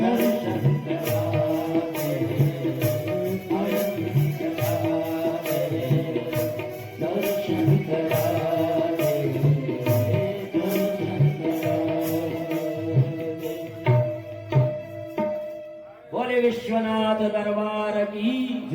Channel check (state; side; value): identical; both; correlation 1.00